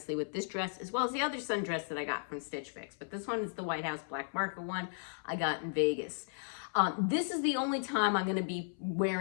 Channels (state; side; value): silent; right; 54 dB below the other